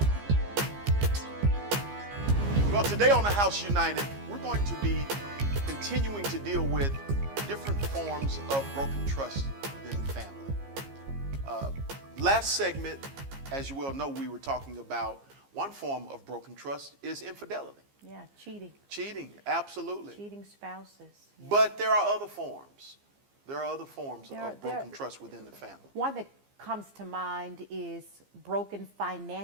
Well, today on the House United, we're going to be continuing to deal with different forms of broken trust within the family. Last segment, as you well know, we were talking about one form of broken trust is infidelity. Yeah, cheating. Cheating, absolutely. Cheating spouses. Yeah. But there are other forms. There are other forms of broken trust within the family. One that comes to mind is broken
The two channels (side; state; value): left; late; 15 ms